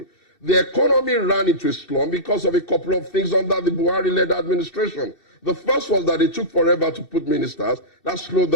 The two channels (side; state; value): right; late; 2.7 ms